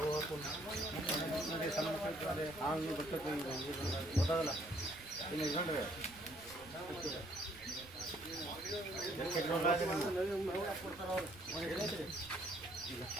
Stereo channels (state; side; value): noise; right; rumble, 21 dB below the sound